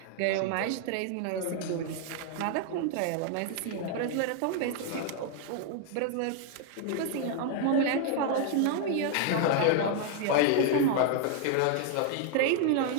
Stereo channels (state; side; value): different; both; correlation 0.00